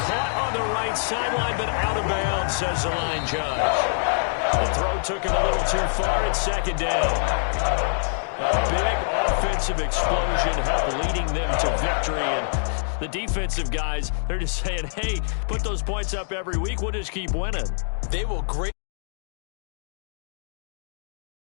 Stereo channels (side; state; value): right; silent; digital silence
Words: on the right sideline, but out of bounds, says the line judge. The throw took him a little too far. It's 2nd down. A big offensive explosion helped leading them to victory. And the defensive guys, they're just saying, hey, put those points up every week. We'll just keep winning. They will greatly